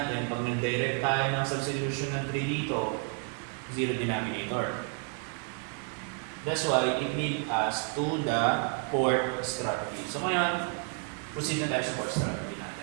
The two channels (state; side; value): quieter; left; 38.7 dB